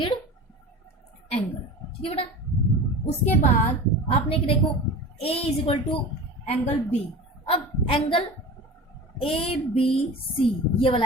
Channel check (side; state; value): both; normal; correlation 0.34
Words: angle, ठीक है बेटा। उसके बाद आपने देखो a is equal to angle b, अब एंगल ए बी सी, ये